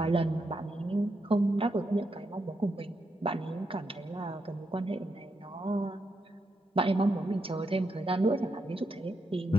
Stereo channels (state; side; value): normal; both; correlation 0.82